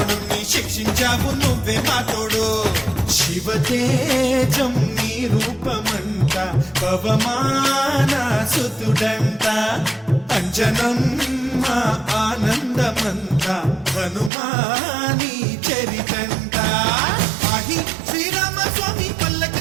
శిక్షించావు నువ్వే మా తోడు శివతేజం నీ రూపమంట పవమాన సుతుడంట అంజనం మా ఆనందమంత హనుమాని చరితంట ఆహి శ్రీరామ స్వామి పల్లకి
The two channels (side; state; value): left; drops out; at 14.3 s